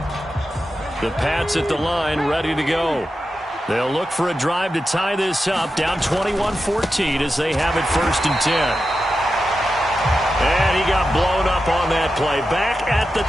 The Pats at the line, ready to go. They'll look for a drive to tie this up, down 21-14 as they have it 1st and 10. And he got blown up on that play, back at the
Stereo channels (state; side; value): normal; both; correlation 0.90